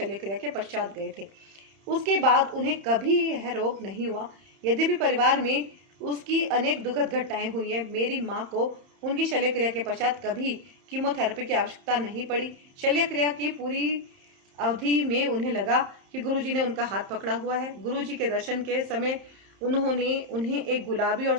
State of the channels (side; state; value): left; late; 31 ms